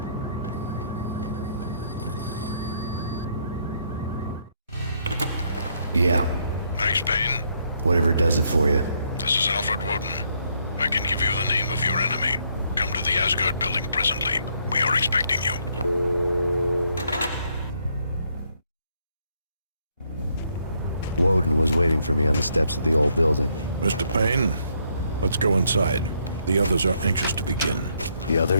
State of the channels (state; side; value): inverted; both; correlation -0.72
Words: Yeah. Max Payne? Whatever does it for you. This is Alfred Woden. I can give you the name of your enemy. Come to the Asgard building presently. We are expecting you. Woden was waiting for me on the steps of the old building. Mr. Payne, let's go inside. The others are anxious to begin. The